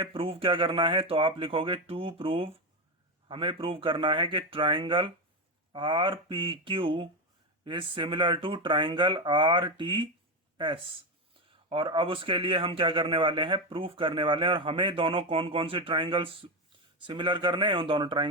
प्रूव क्या करना है, तो आप लिखोगे टू प्रूव, हमें प्रूव करना है कि triangle R P Q is similar to triangle R T S. और अब उसके लिए हम क्या करने वाले हैं, प्रूफ करने वाले हैं। और हमें दोनों कौन कौन से ट्राइंगल्स सिमिलर करने हैं, उन दोनों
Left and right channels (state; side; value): normal; both; correlation 0.12